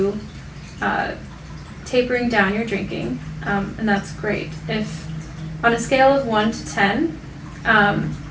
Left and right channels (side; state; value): both; identical; correlation 1.00